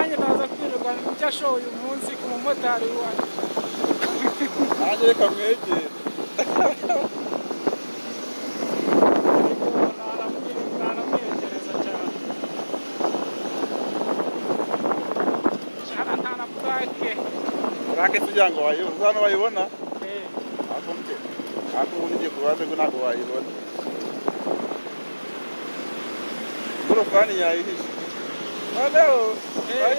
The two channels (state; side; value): inverted; both; correlation -1.00